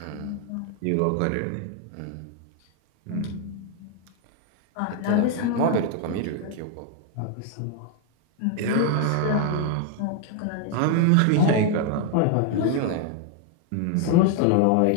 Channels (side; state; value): both; different; correlation 0.00